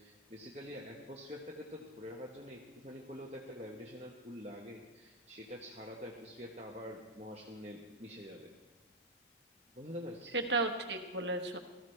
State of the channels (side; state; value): both; normal; correlation 0.01